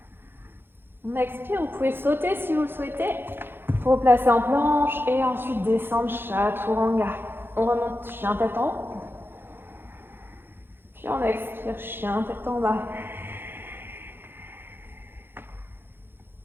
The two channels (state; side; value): late; left; 0.10 ms